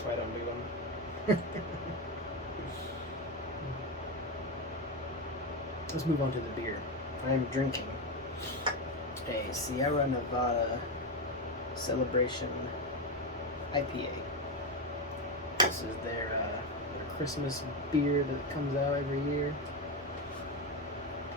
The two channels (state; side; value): normal; both; correlation 0.12